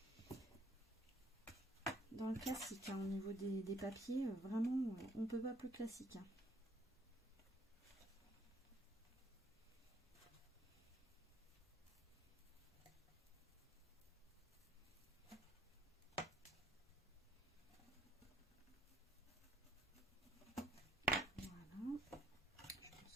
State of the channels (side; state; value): both; normal; correlation 0.63